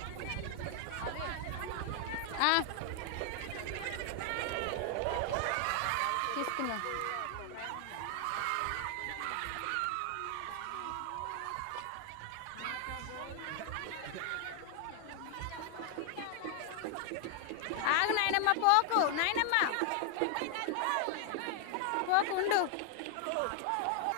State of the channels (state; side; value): different; both; correlation 0.00